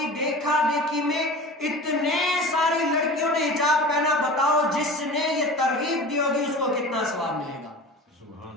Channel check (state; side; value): normal; both; correlation 0.36